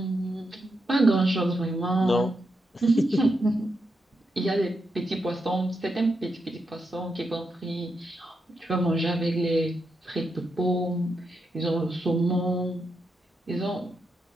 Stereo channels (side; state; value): both; normal; correlation 0.84